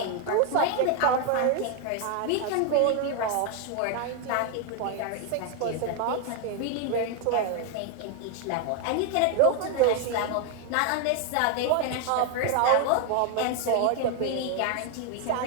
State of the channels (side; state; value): both; different; correlation 0.01